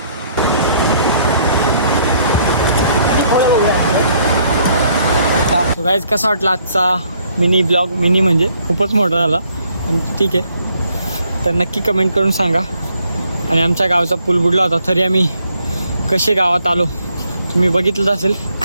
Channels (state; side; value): inverted; both; correlation -0.67